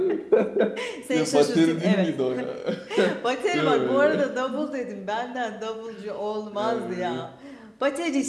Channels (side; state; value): both; identical; correlation 1.00